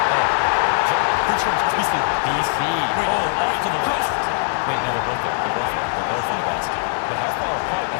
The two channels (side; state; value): right; silent; 62 dB below the other